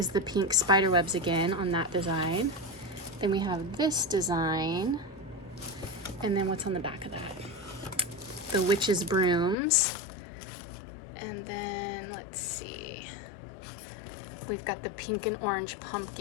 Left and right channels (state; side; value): drops out; right; at 9.6 s